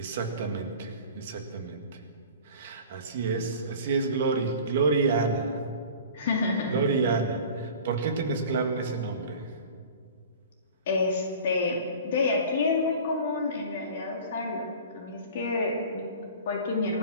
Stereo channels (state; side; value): inverted; both; correlation -0.41